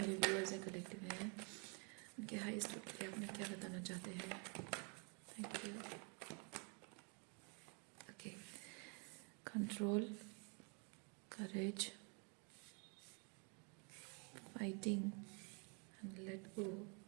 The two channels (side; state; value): left; quieter; 36.3 dB